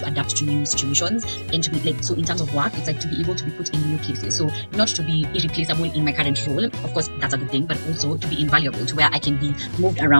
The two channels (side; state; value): both; inverted; correlation -1.00